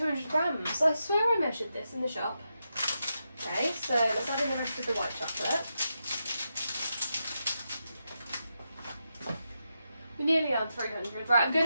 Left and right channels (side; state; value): both; inverted; correlation -0.86